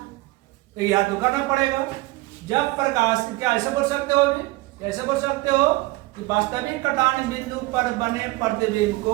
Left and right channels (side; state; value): left; quieter; 20.7 dB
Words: याद तो करना पड़ेगा। जब प्रकाश, क्या ऐसे बोल सकते हो भी, ऐसे बोल सकते हो कि वास्तविक कटान बिंदु पर बने प्रतिबिंब को